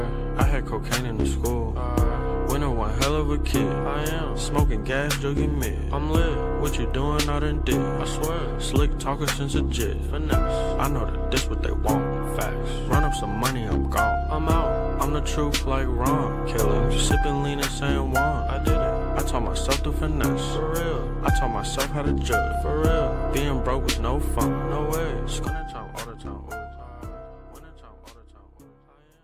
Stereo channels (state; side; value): identical; both; correlation 1.00